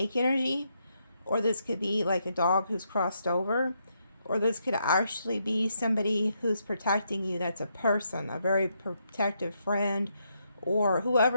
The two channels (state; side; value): inverted; both; correlation -0.78